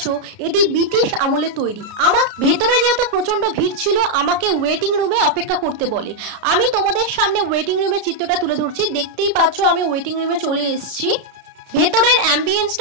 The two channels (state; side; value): late; left; 33 ms